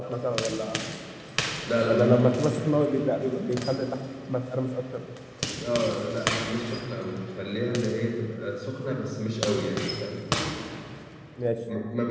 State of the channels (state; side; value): identical; both; correlation 1.00